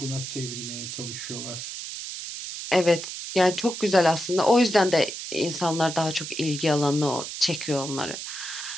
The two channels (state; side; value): noise; right; hiss, 8 dB below the sound